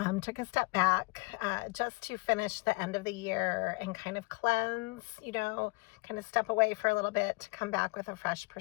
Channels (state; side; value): quieter; right; 27.4 dB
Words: Took a step back just to finish the end of the year and kind of cleanse, kind of step away for a little bit to come back with a fresh